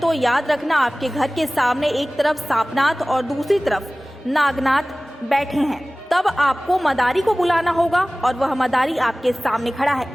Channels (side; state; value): both; normal; correlation 0.98